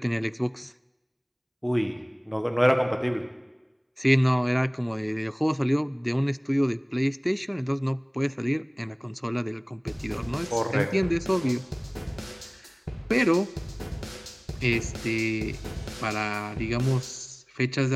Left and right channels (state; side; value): identical; both; correlation 1.00